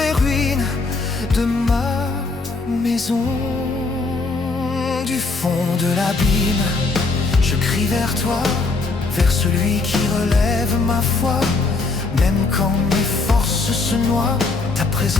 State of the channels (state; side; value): quieter; right; 3.7 dB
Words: ruines de ma maison. Du fond de l'abîme, je crie vers toi, vers celui qui relève ma foi. Même quand mes forces se noient, ta